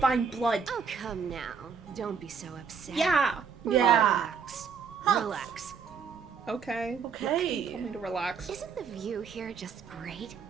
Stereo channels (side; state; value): left; quieter; 6.2 dB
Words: Blood. Oh, come now. Don't be so upset. Yeah. Relax. Relax. Okay. Okay. Tell me to relax. Isn't the view here just great?